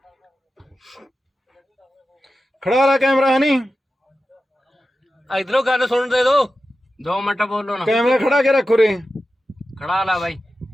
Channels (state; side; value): normal; both; correlation 0.93